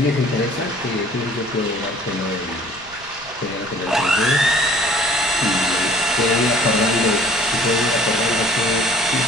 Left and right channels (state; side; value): noise; left; rumble, 24 dB below the sound